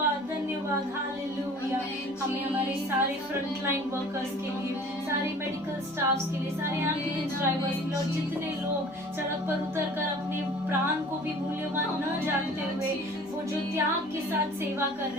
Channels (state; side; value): normal; both; correlation 0.46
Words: धन्यवाद। हालेलुया। हमें हमारे सारे फ्रंट लाइन वर्कर्स के लिए, सारे मेडिकल स्टाफ्स के लिए, सारे एम्बुलेंस ड्राइवर्स के लिए, और जितने लोग सड़क पर उतर कर अपने प्राण को भी मूल्यवान न जानते हुए वो जो त्याग के साथ सेवा कर